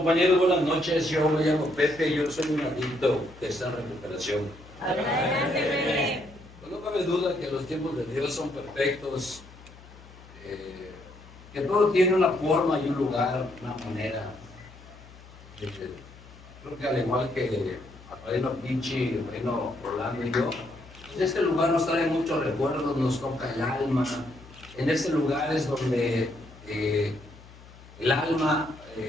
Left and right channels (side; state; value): left; noise; hum, 21 dB below the sound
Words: buenas noches. Yo me llamo Pepe, yo soy un adicto que está en recuperación. Adelante, Pepe. Pues no cabe duda que los tiempos de Dios son perfectos, que todo tiene una forma y un lugar, una manera. Creo que al igual que el reino Pichi, el reino Orlando y yo, en este lugar nos trae muchos recuerdos, nos toca el alma. En este lugar es donde el alma